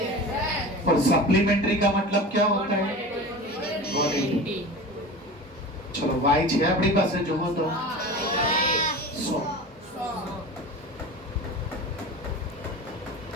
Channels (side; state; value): both; normal; correlation 0.33